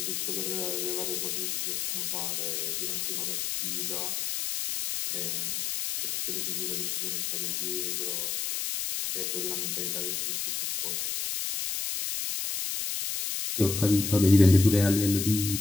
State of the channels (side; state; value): left; noise; hiss, 2 dB below the sound